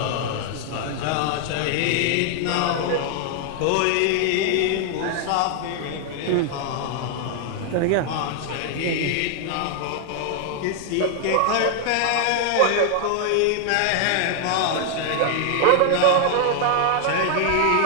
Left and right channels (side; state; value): both; different; correlation 0.00